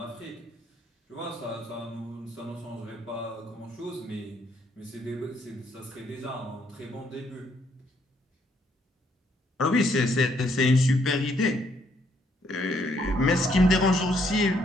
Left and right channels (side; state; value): both; normal; correlation 0.70